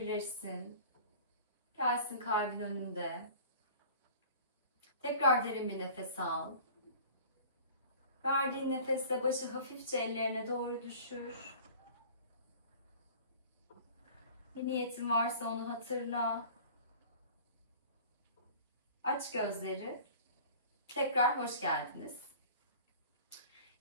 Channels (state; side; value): inverted; both; correlation -0.44